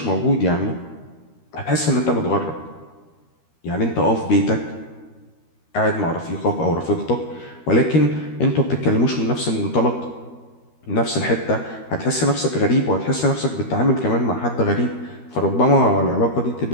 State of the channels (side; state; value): right; late; 13 ms